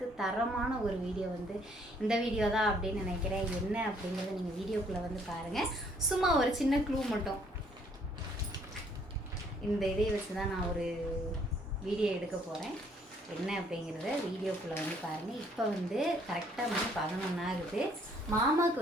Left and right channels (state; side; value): normal; both; correlation 0.64